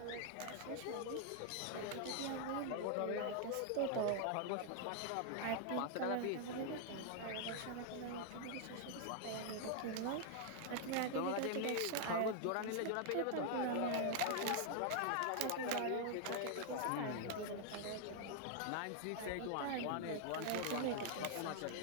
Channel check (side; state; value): both; different; correlation 0.00